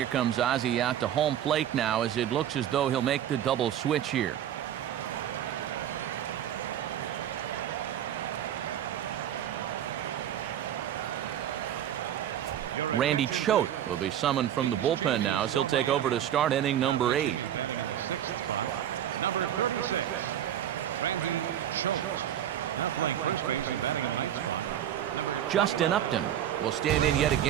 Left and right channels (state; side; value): quieter; left; 10.7 dB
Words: comes Ozzie out to home plate now, as it looks as though he'll make the double switch here. Randy Choate will be summoned from the bullpen now, as he'll take over to start inning number 8. Number 36, Randy Choate. Now playing first base and batting in the ninth spot. Justin Upton will stand in yet